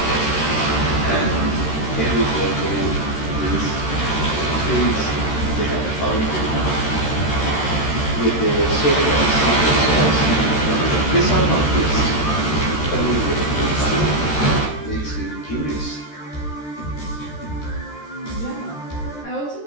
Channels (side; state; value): right; late; 13 ms